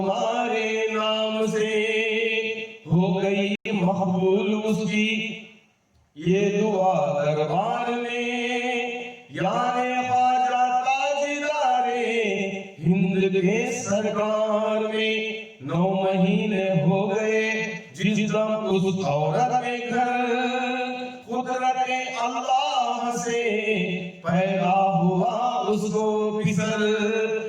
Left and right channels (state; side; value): identical; both; correlation 1.00